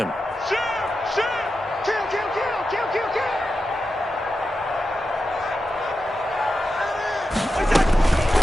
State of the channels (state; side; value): normal; both; correlation 0.90